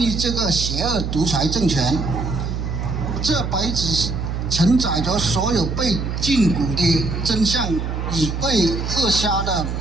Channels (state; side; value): noise; right; hum, 3 dB below the sound